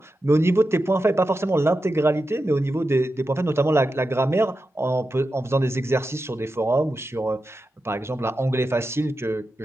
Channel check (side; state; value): both; normal; correlation 0.90